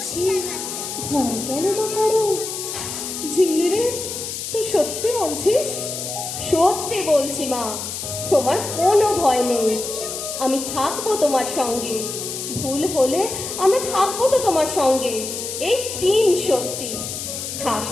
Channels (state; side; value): noise; left; hiss, 6 dB below the sound